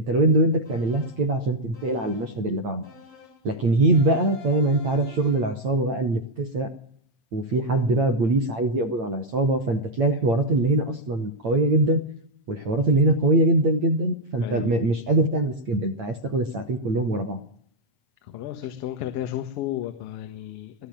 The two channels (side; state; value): left; late; 8.8 ms